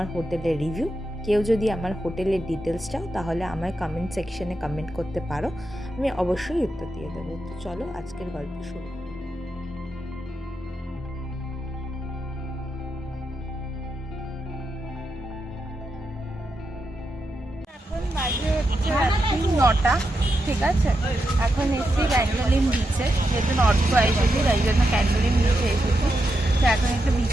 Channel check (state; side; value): normal; both; correlation 0.85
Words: হোটেলের রিভিউ। কেউ যদি আমার হোটেলের ডিটেলস চাও তাহলে আমায় কমেন্ট সেকশনে কমেন্ট করতে পারো, আমি অবশ্যই উত্তর দিয়ে দেবো। তো চলো আজকের গল্প শুরু। এখন বাজে হচ্ছে রাত্রি 9টা, ঠিক আছে। এখন এসেছি ক্যান্ডোলিম বিচে, যেহেতু নর্থ গোয়া এসেছি তাই জন্য ক্যান্ডোলিম বিচে এসেছি। তো এখন একটু